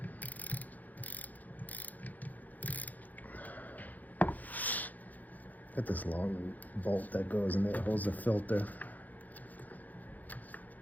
got this long bolt that goes in there, holds the filter.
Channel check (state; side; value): late; right; 0.081 ms